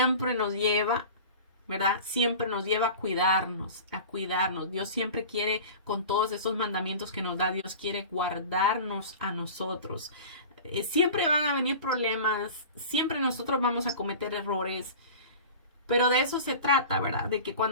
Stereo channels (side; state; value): both; inverted; correlation -0.36